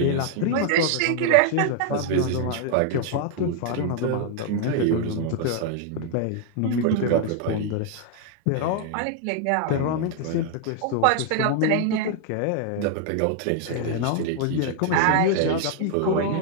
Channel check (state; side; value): different; both; correlation 0.00